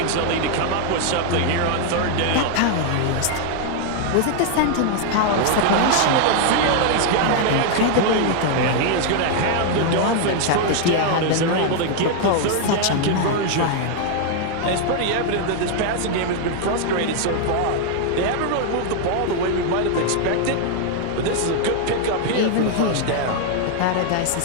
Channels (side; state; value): both; different; correlation 0.00